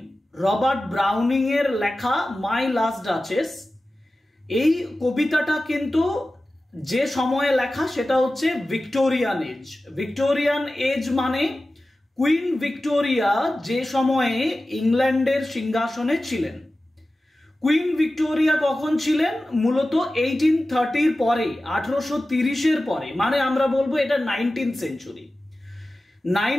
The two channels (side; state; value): both; normal; correlation 0.95